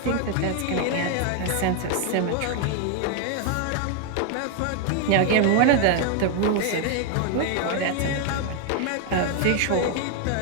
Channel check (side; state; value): both; different; correlation 0.01